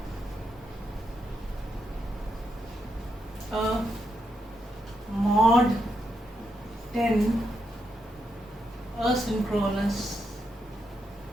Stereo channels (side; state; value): both; normal; correlation 0.82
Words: a mod 10 asynchronous